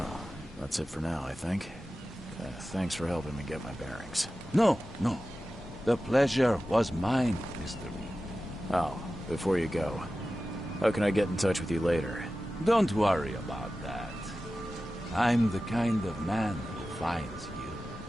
that's it for now, I think. Thanks for helping me get my bearings. No. The pleasure was mine, Mr. Reed. Oh, before you go, how can I get in touch with you later? Don't worry about that. I'm the kind of man who finds you.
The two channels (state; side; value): normal; both; correlation 0.94